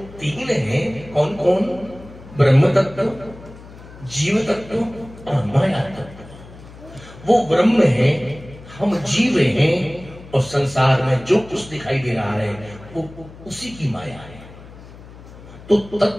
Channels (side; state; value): left; noise; hum, 19 dB below the sound